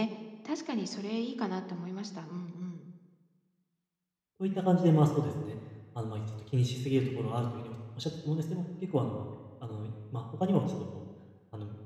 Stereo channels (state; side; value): identical; both; correlation 1.00